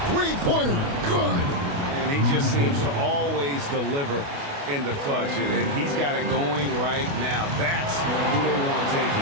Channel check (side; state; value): left; late; 28 ms